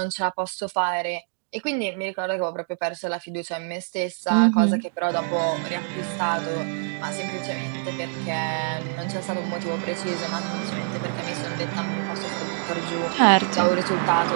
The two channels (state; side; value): silent; left; digital silence